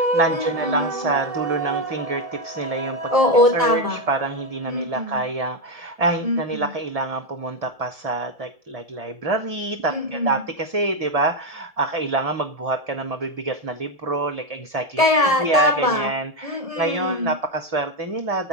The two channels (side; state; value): left; late; 1.7 ms